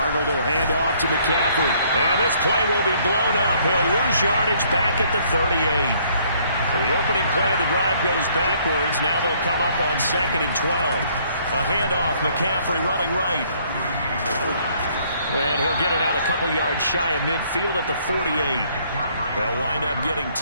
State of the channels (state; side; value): inverted; both; correlation -0.63